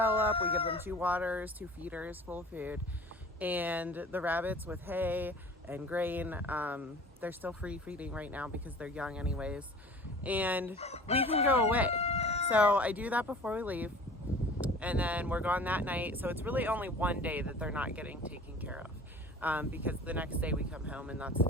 up, we give them 2 waters, 2 feeders full of food, and the rabbits with hay and grain. They're still free feeding right now because they're young anyways, and we can go away. So I do that before we leave, and then we're gone that night. So it's really only one day that they're not getting taken care of, because the next day we come home, and that's the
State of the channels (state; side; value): normal; both; correlation 0.43